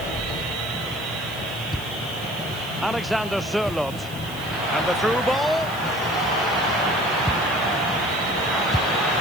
Alexander Sørloth. And the through ball.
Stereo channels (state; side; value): noise; right; hiss, 17 dB below the sound